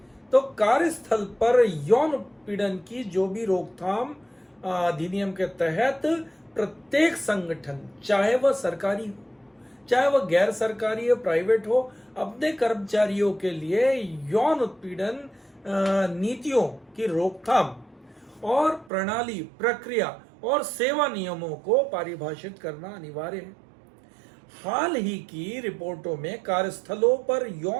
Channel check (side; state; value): left; drops out; at 18.9 s